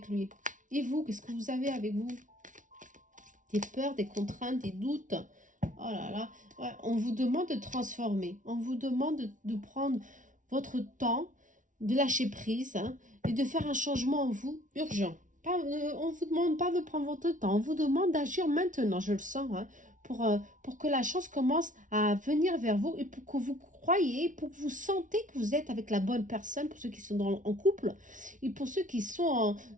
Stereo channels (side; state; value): left; late; 0.37 ms